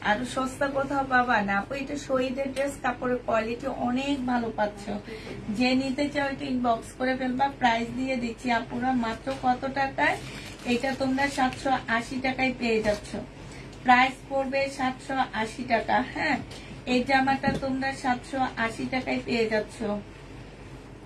আরো সস্তা কোথাও পাবা না। আপু এটা শহীদের ড্রেস, কাপড়ের কোয়ালিটি অনেক ভালো পাচ্ছ। যে নিতে চাও এটা ইনবক্স করে ফেলবা। প্রাইস দিয়ে দিচ্ছি আপুরা মাত্র কত টাকায়, এটা তোমরা 780 টাকায় পেয়ে যাচ্ছ। প্রাইস পড়বে 780 টাকা। হ্যাঁ এই জামাটা তোমরা 780 টাকায় পেয়ে যাচ্ছ।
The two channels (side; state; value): both; identical; correlation 1.00